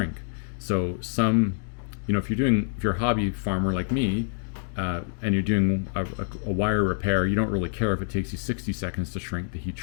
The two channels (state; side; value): silent; right; digital silence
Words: So some, if you're a hobby farmer like me, and you're doing a wire repair, you don't really care if it takes you 60 seconds to shrink the heat